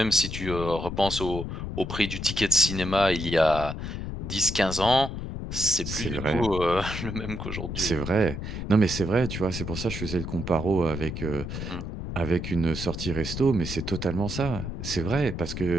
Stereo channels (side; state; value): left; noise; rumble, 6 dB below the sound